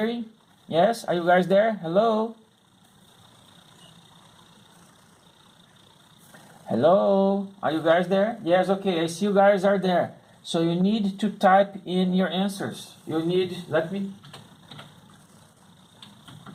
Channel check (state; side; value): identical; both; correlation 1.00